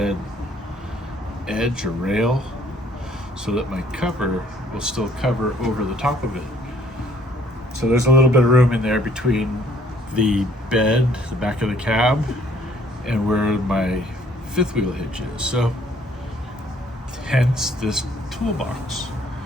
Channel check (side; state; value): both; normal; correlation 0.62